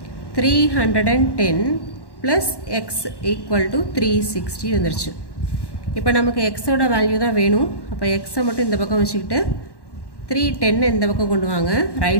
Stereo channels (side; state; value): right; late; 1.1 ms